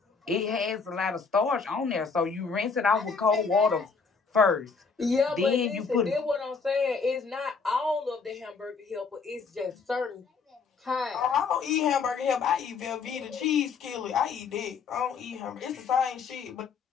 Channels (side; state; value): right; quieter; 5.2 dB